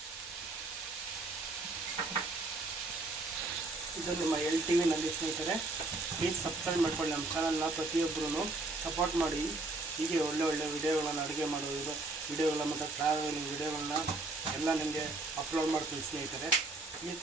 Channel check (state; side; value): quieter; left; 3.2 dB